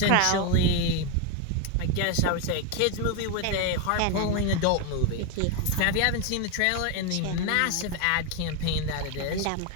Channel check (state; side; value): different; both; correlation 0.01